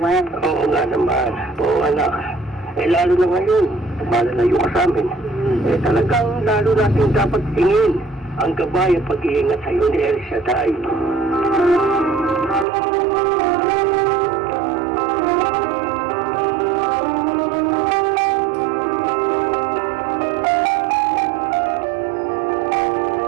Oo nga naman. Oo, anak. Lalo na ngayon, malalayo ka sa amin. Talagang lalo natin dapat tingin ang gabay at pag-iingat sa'yo ni El Shaddai.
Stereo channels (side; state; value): left; drops out; at 12.7 s